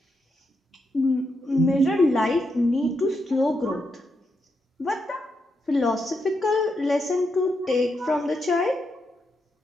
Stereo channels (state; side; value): normal; both; correlation 0.83